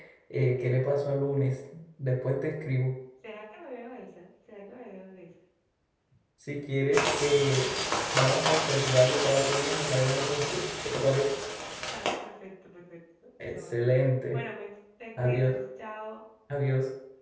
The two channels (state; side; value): identical; both; correlation 1.00